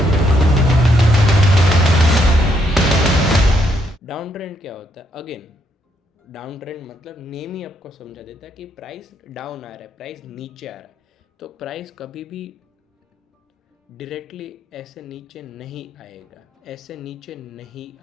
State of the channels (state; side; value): normal; both; correlation 0.75